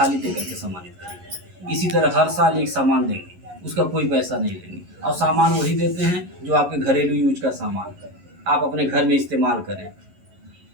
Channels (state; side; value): late; left; 11 ms